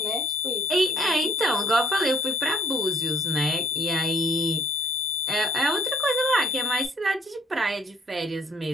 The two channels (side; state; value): both; normal; correlation 0.59